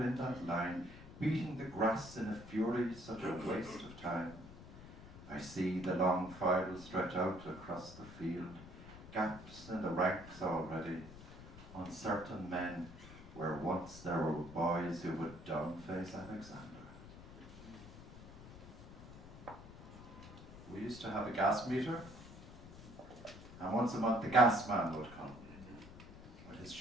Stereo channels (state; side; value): noise; left; rumble, 15 dB below the sound